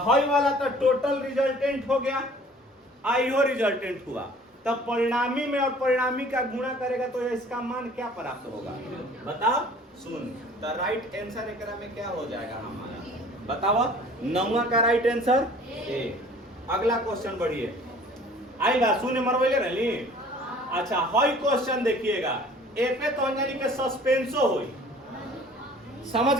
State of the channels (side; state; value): both; normal; correlation 0.50